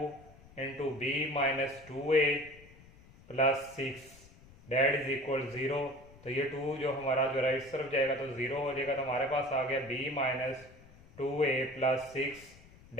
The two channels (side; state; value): left; noise; rumble, 23 dB below the sound